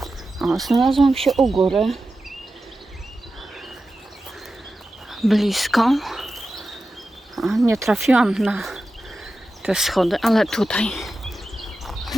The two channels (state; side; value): normal; both; correlation 0.92